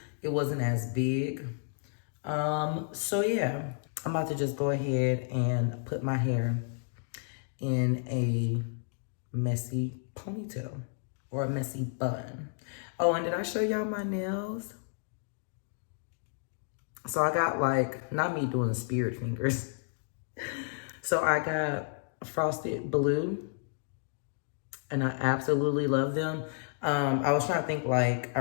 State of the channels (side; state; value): right; silent; digital silence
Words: it wasn't as big. So yeah, I'm about to just go ahead and put my hair in a messy ponytail or a messy bun. Oh, and did I show y'all my nails? So I got like, not me doing the spirit fingers. So I got frosted blue and I absolutely love them. I was trying to think like, I